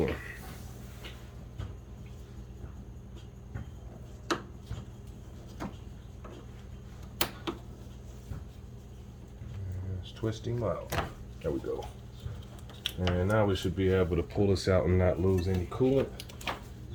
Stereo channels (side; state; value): both; identical; correlation 1.00